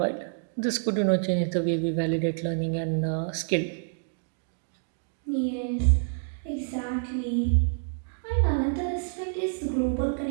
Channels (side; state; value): left; silent; digital silence